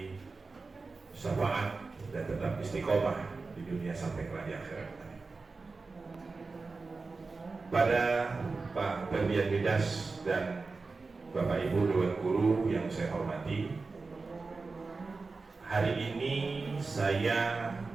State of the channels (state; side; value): quieter; left; 4.0 dB